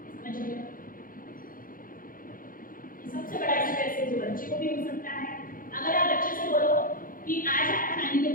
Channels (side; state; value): right; late; 0.40 ms